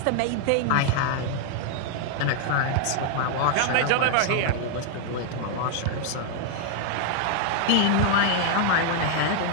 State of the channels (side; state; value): both; different; correlation 0.00